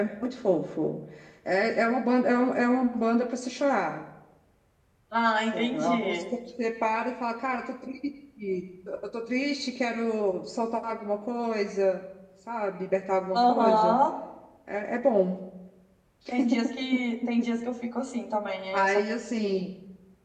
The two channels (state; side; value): identical; both; correlation 1.00